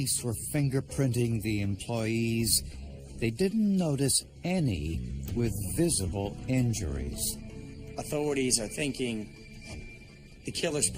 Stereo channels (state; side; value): identical; both; correlation 1.00